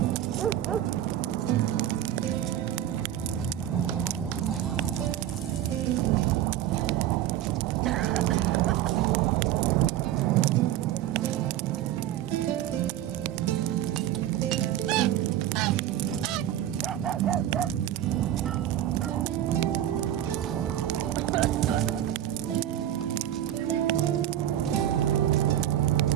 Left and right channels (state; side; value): quieter; left; 12.1 dB